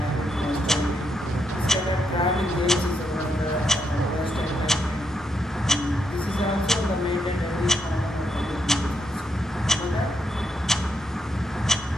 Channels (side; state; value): both; normal; correlation 0.80